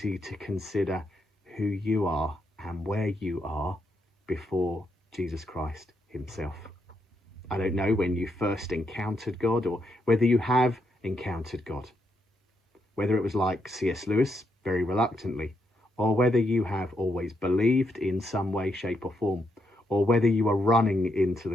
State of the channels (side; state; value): both; normal; correlation 0.79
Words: to consider who you are and where you are before Jesus Christ himself. I don't know when you first encountered God, or whether you have encountered God, whether it was like C.S. Lewis, very reluctantly, or whether you have always believed in some way, shape or form, or whether you are running into